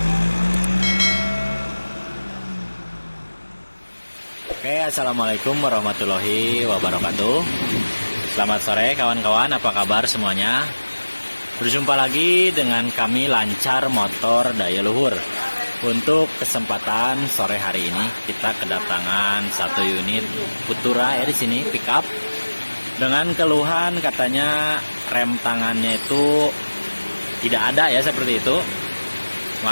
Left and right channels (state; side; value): inverted; both; correlation -1.00